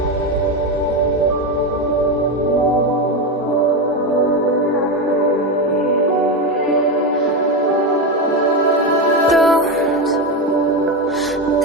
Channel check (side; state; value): both; normal; correlation 0.13